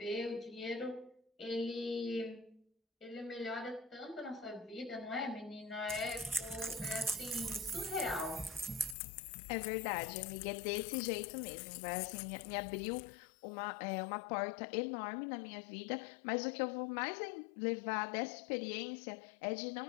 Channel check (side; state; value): right; drops out; at 9.0 s